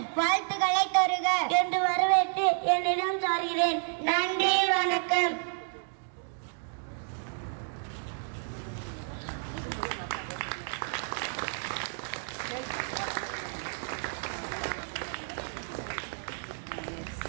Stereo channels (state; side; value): silent; left; 57 dB below the other